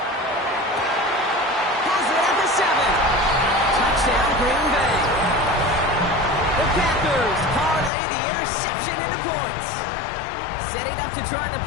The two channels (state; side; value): drops out; right; at 7.9 s